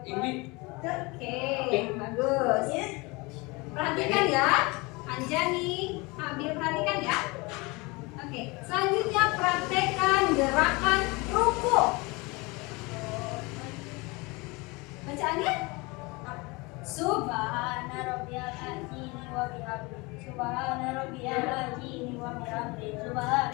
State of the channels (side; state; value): right; quieter; 25.6 dB